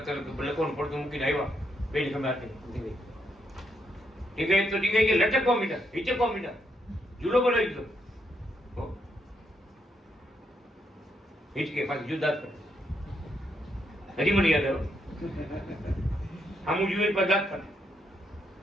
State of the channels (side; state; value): both; normal; correlation 0.78